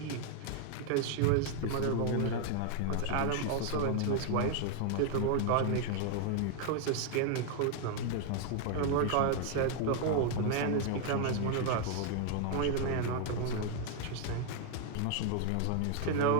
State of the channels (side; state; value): both; different; correlation 0.00